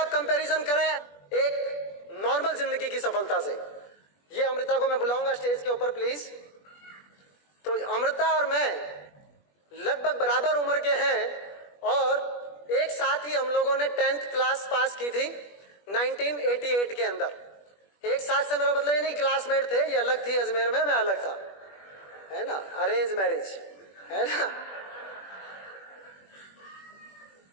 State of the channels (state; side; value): late; right; 21 ms